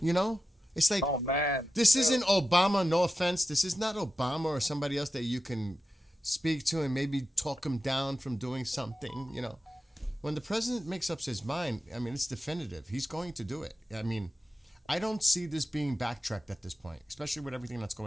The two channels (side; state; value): both; normal; correlation 0.91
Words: know? It's like, Oh man, this isn't Obama, no offense. This is not Obama or somebody else that you can speak to and maybe talk him down from doing something, you know. When the president makes up his mind, I mean, it's definitive. He's going to do it. I mean, I don't see this being backtracked at this point, especially with everything that's